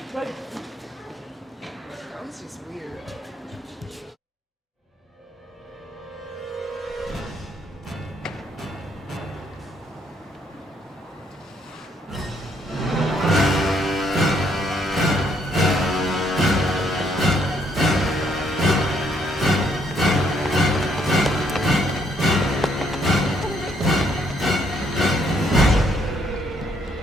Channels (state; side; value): normal; both; correlation 0.70